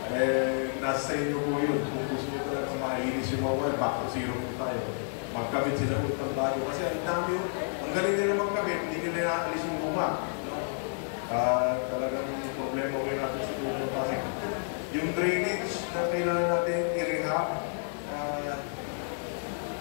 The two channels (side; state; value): right; silent; digital silence